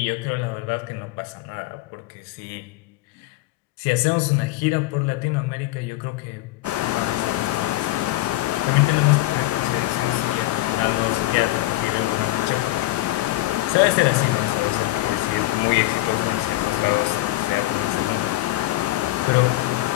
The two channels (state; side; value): quieter; right; 17.6 dB